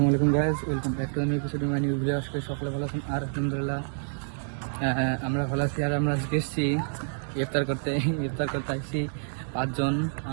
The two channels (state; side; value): silent; left; digital silence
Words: আলাইকুম guys, welcome back to new episode my new video. আজকে সকলে ভালো আছেন আর আলহামদুলিল্লাহ আমরা ভালো আছি। আর আমরা আজকে এসেছি ইফতার করতে আসছি পাঁচজন,